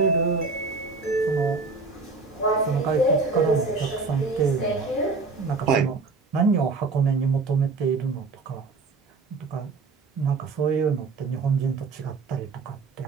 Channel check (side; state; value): left; quieter; 4.2 dB